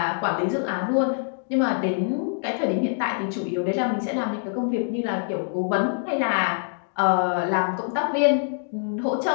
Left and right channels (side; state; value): right; silent; digital silence